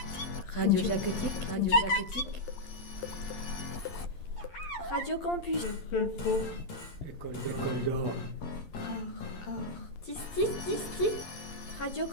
Radio Jacotique, Radio Jacotique. Radio Campus. École d'or. Tis. Radio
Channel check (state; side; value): late; right; 11 ms